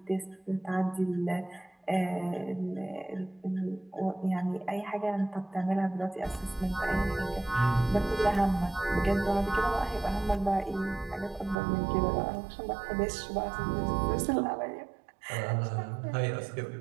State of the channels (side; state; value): left; drops out; at 11.6 s